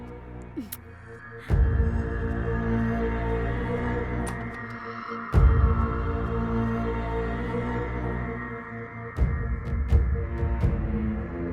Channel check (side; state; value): both; identical; correlation 1.00